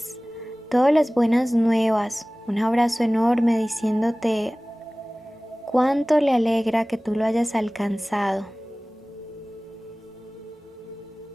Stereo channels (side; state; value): both; normal; correlation 0.98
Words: buenas nuevas, un abrazo enorme diciéndote cuánto le alegra que tú lo hayas alcanzado.